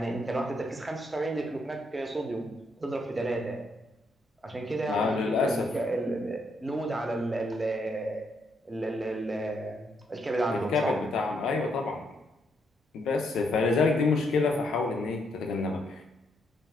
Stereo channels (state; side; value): normal; both; correlation 0.76